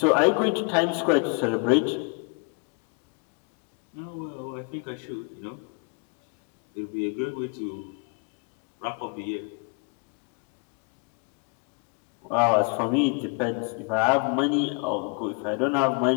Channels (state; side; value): quieter; right; 35.7 dB